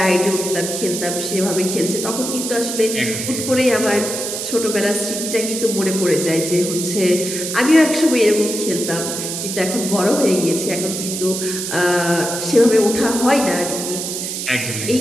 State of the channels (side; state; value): right; noise; hiss, 4 dB below the sound